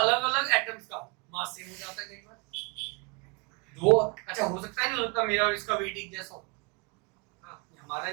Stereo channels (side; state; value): left; quieter; 30.4 dB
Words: एटम्स का मास सेम हो जाता है कई बार। दो, अच्छा हो सकता है, नहीं हो सकता मेरा और इसका वेट एक जैसा हो, हमारा